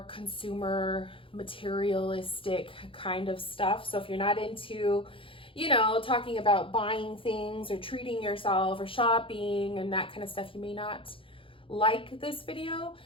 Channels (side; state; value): right; late; 0.26 ms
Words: consumer, materialistic kind of stuff. So if you're not into, you know, talking about buying things or treating yourself or shopping and that kind of stuff, you may not like this video,